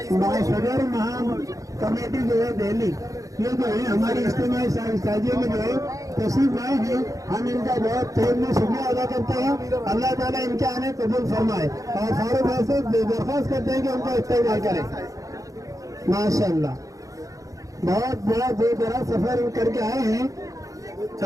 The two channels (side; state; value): left; late; 0.16 ms